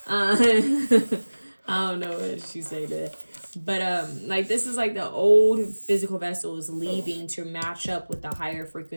I don't know what she say that. But like this is like the old physical vessel is leaving to match up with the higher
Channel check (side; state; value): both; inverted; correlation -1.00